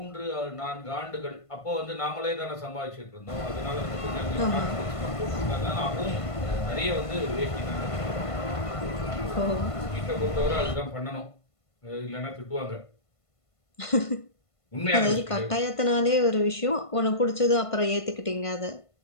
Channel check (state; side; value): late; right; 1.5 ms